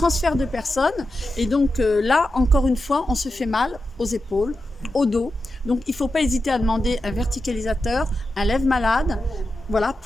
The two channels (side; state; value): both; normal; correlation 0.90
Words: de personnes. Et donc là, encore une fois, on se fait mal aux épaules, au dos. Donc il ne faut pas hésiter à demander un verticalisateur, un lève-malade, Voilà,